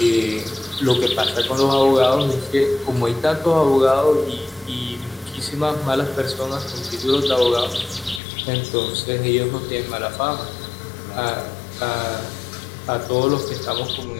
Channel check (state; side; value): drops out; right; at 8.2 s